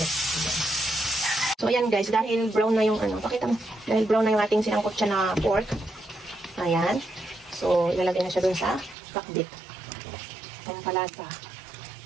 So ayan guys, dahil brown na yung pakita mo. Dahil brown na yung ating sinangkot siya na pork. Ayan. So ilalagay na siya dun sa pakbet. Ang palasa.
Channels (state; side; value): drops out; left; at 9.0 s